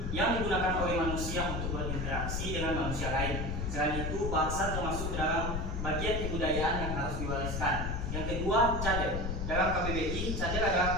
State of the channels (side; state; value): left; noise; rumble, 2 dB below the sound